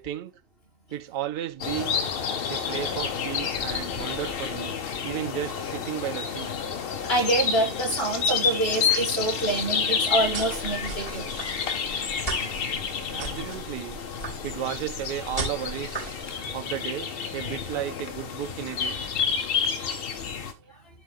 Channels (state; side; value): late; right; 2.7 ms